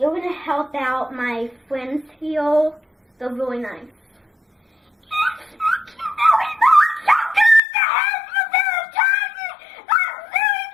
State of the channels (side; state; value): right; drops out; at 7.6 s